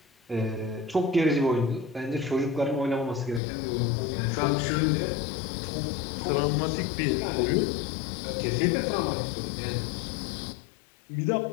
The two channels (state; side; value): drops out; right; at 3.4 s